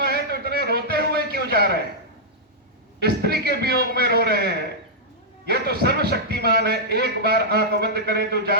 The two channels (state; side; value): normal; both; correlation -0.09